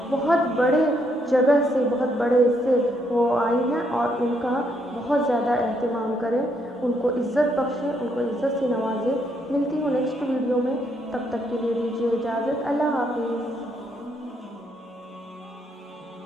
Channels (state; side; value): normal; both; correlation 0.74